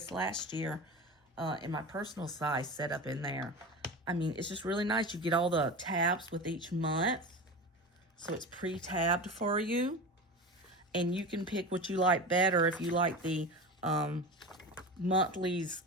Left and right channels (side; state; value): both; normal; correlation 0.28